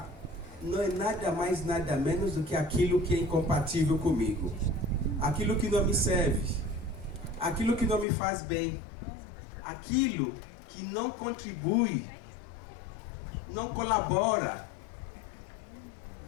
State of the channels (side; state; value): right; drops out; at 8.1 s